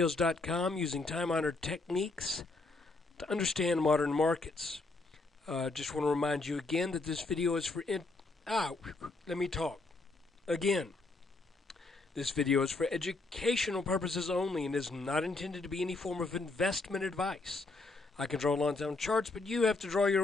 using time-honored techniques to understand modern markets. Just want to remind you again that this video is for let me talk again. This video is for educational purposes only and is not intended to be any form of investment advice. I can draw lines on charts, but you have to draw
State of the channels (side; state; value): right; quieter; 3.3 dB